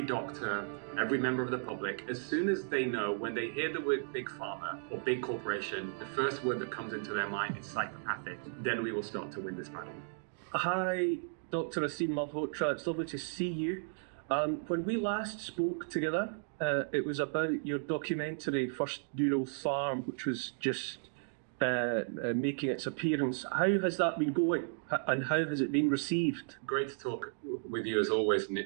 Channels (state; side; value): silent; left; digital silence